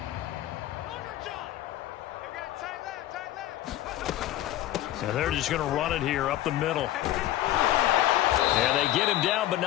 So they're just going to run it here up the middle. And they get him down, but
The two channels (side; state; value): right; quieter; 13.9 dB